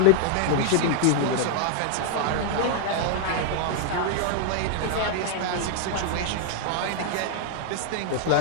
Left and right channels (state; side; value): different; both; correlation 0.00